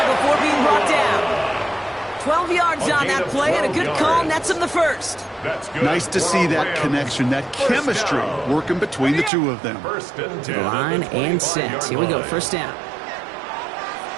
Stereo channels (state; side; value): drops out; left; at 9.3 s